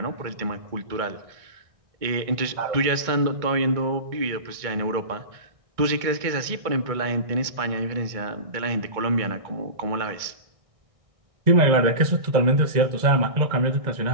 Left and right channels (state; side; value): late; left; 1.6 ms